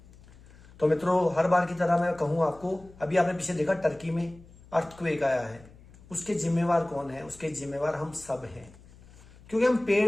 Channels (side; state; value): left; noise; hum, 23 dB below the sound